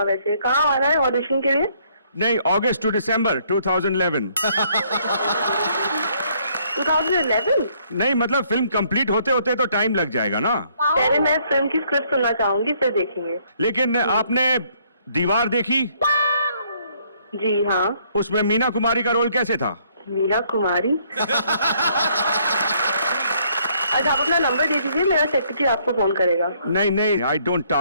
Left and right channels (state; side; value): inverted; both; correlation -0.66